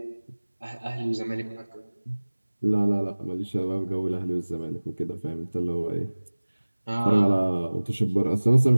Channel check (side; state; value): both; inverted; correlation -1.00